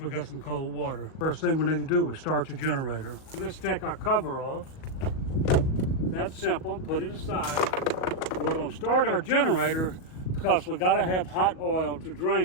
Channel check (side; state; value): right; late; 38 ms